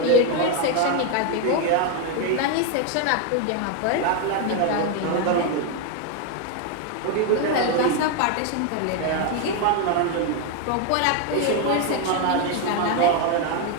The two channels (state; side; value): different; both; correlation 0.01